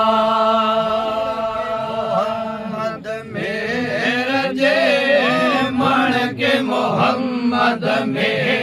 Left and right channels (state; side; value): identical; both; correlation 1.00